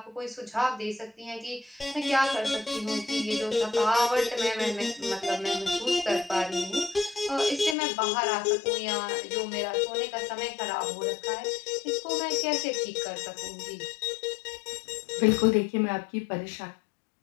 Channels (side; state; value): right; drops out; at 7.8 s